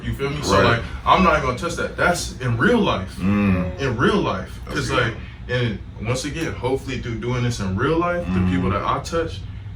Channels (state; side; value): identical; both; correlation 1.00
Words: You feel me? So like, I'm not gonna touch that. That's in real life. In real life, because like, and once again, hopefully through doing this in real life, the people that I touch,